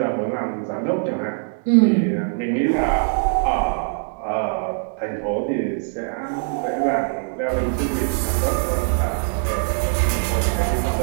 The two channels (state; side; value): silent; left; digital silence